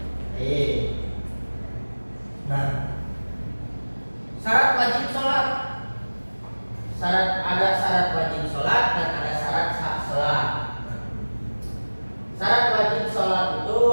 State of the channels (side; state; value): both; inverted; correlation -1.00